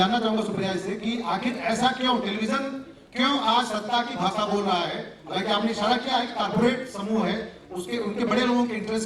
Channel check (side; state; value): both; identical; correlation 1.00